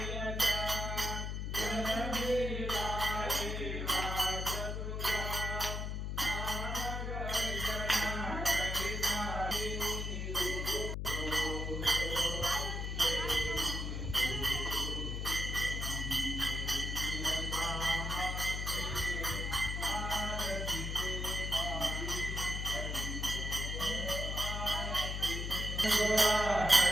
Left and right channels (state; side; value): noise; left; hum, 3 dB below the sound